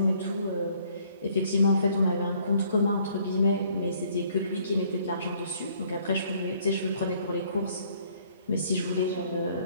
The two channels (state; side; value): inverted; both; correlation -0.62